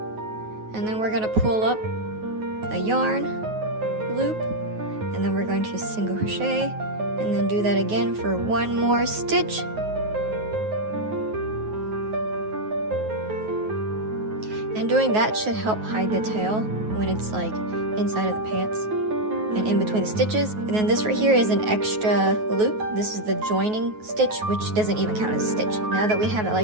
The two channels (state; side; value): late; left; 9.4 ms